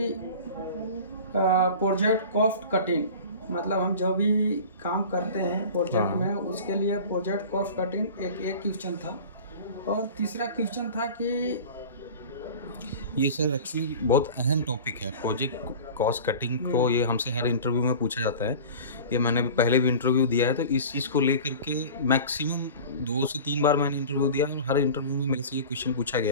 प्रोजेक्ट कॉस्ट कटिंग, मतलब हम जो भी काम करते हैं प्रोजेक्ट हाँ। में उसके लिए प्रोजेक्ट कॉस्ट कटिंग एक क्वेश्चन था। और तीसरा क्वेश्चन था कि ये सर एक्चुअली बहुत अहम टॉपिक है प्रोजेक्ट कॉस्ट कटिंग को। ये हमसे हर इंटरव्यू में पूछा जाता है। ये मैंने भी पहले भी इंटरव्यू दिया है, तो इस चीज़ को लेकर के मैक्सिमम 2 से 3 बार मैंने इंटरव्यू दिया है और हर इंटरव्यू में मेरे से ये क्वेश्चन पूछा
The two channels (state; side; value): inverted; both; correlation -0.38